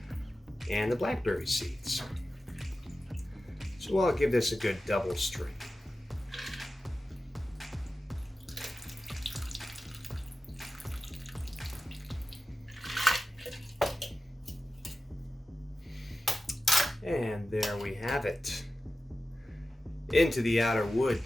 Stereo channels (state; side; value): normal; both; correlation 0.93